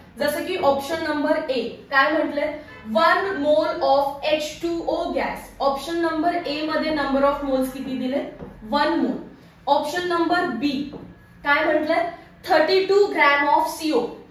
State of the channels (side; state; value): both; identical; correlation 1.00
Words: जसं की ऑप्शन नंबर ए काय म्हटले? 1 mole of H2O gas. Option number ए मध्ये नंबर ऑफ मोल्स किती दिले? 1 मोल. ऑप्शन नंबर बी काय म्हटले? 32 gram of CO.